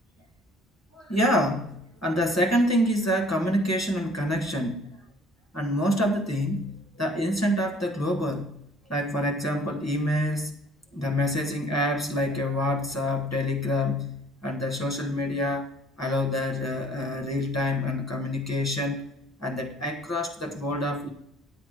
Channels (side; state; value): both; normal; correlation 0.55